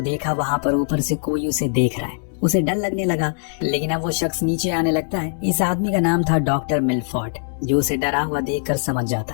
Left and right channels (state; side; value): silent; right; 65 dB below the other